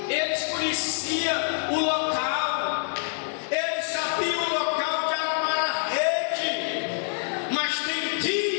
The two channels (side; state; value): right; silent; digital silence